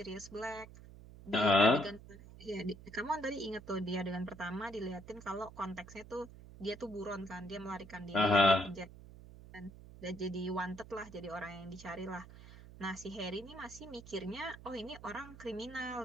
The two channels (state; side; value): noise; right; hum, 17 dB below the sound